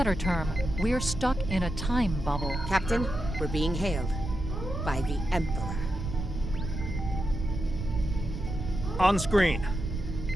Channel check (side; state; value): right; noise; rumble, 5 dB below the sound